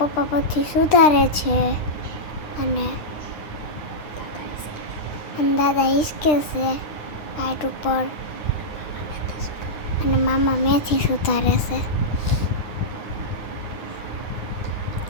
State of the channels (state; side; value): late; right; 9.7 ms